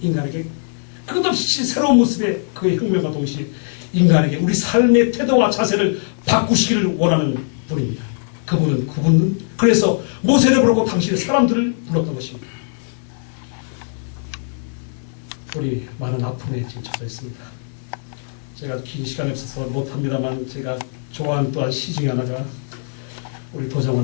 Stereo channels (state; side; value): silent; right; digital silence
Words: 끝없이 새로운 모습의 그의 혁명과 동시에 인간에게 우리 삶의 태도와 자세를 바꾸시기를 원하는 분입니다. 그분은 그래서 모세를 부르고 당신의 사람들을 불렀던 것입니다. 우리 많은 아픔에 지금 처져 있습니다. 제가 긴 시간이 없어서 못합니다만 제가 좋아하는 또한 시 중에 하나가 우리